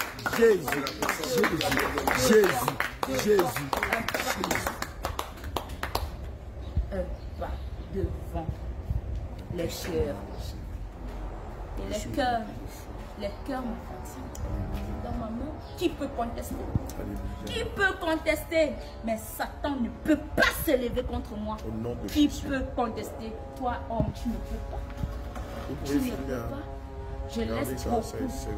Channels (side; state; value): both; identical; correlation 1.00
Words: Un pas devant les cœurs. Et les cœurs me fatiguent. Dans ma main, qui peut contester? Qui peut contester? Mais Satan ne peut pas s'élever contre moi. Qui peut contester? Toi, homme, tu ne peux pas. Tu ne peux pas. Je laisse beaucoup. C'est